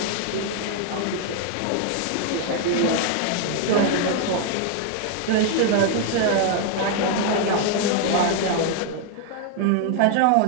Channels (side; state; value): both; different; correlation 0.00